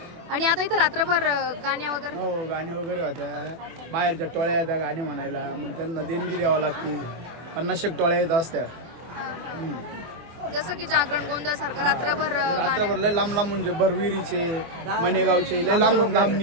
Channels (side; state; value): left; late; 24 ms